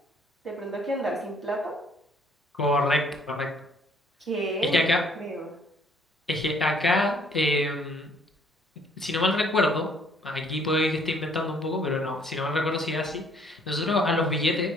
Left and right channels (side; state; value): both; normal; correlation 0.62